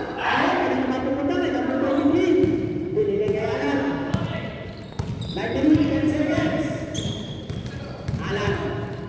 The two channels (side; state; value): both; identical; correlation 1.00